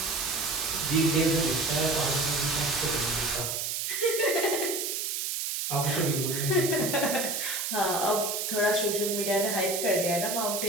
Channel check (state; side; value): noise; right; hiss, 2 dB below the sound